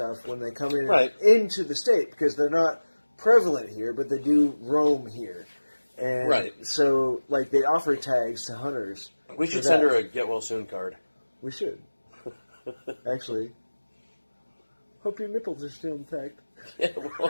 when they come in into the state because they're not prevalent here, but they do roam here. And so, like, they offer tags to hunters. We should send her a get well soon card. We should. Actually. Hope your nipples are still intact. Yeah, well,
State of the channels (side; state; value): both; inverted; correlation -1.00